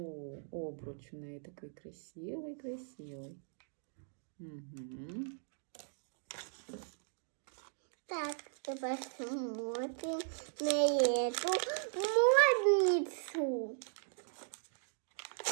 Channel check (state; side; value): silent; left; digital silence